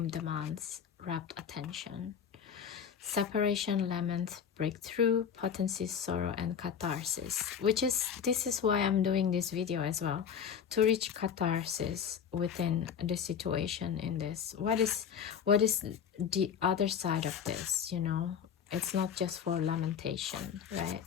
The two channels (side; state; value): right; quieter; 7.7 dB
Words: demands rapt attention. Separation, lament, breakthrough, potency, sorrow, and catharsis, which is, this is why I'm doing this video as well, to reach catharsis within the situation in this. What is the other side of this, you know? It's not just for lamentation, right?